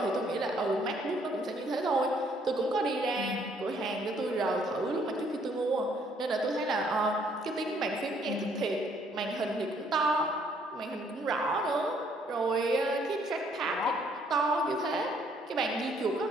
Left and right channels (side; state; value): both; normal; correlation 0.66